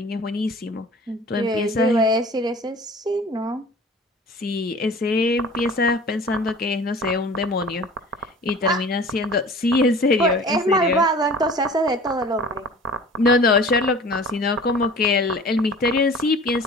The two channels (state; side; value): normal; both; correlation 0.43